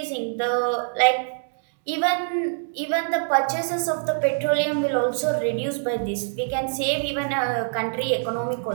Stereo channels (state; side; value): silent; left; digital silence